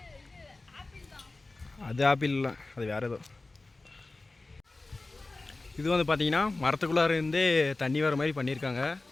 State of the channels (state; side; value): quieter; right; 3.2 dB